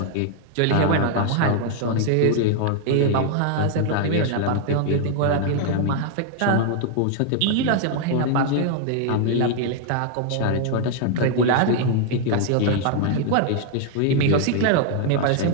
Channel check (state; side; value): different; both; correlation 0.00